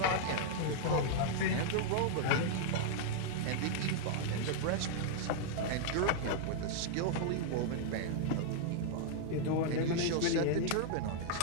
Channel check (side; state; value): both; different; correlation -0.01